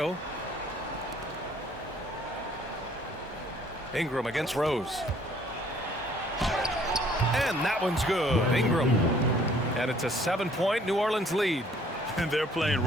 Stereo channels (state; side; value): normal; both; correlation 0.59